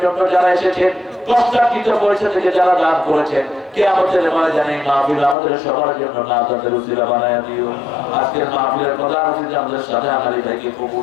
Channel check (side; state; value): right; drops out; at 5.4 s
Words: জন্য যারা এসেছেন, কষ্টার্জিত পয়সা থেকে যারা দান করেছেন, কিয়ামতের ময়দানে এই মাহফিল আমাদের সবার জন্য নাজাতের উসিলা বানায় দিও। আজকের মাহফিলের প্রধান অতিথি আমাদের সাথে আলী ভাইকে